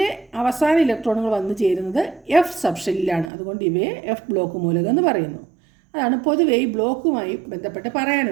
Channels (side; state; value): left; drops out; at 3.3 s